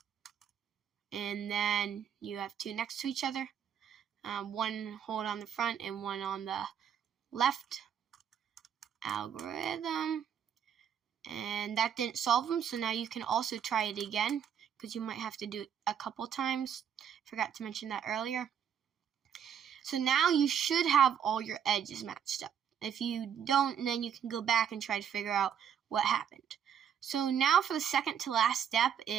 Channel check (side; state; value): left; quieter; 8.5 dB